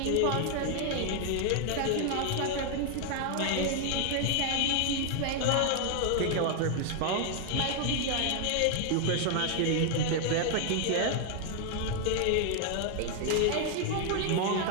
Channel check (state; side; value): different; both; correlation 0.00